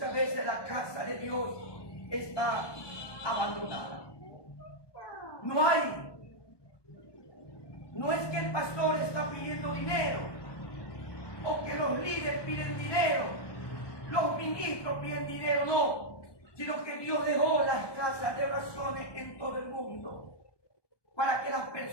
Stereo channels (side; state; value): right; late; 1.2 ms